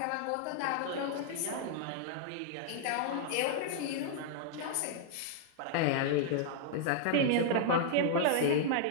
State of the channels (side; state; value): both; different; correlation -0.01